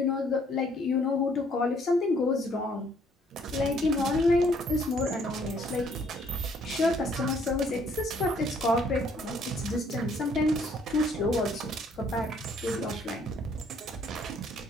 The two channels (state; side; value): normal; both; correlation 0.64